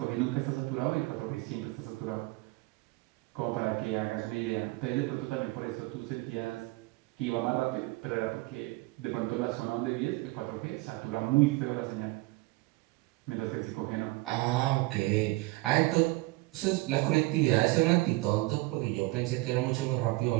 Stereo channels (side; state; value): left; quieter; 22.0 dB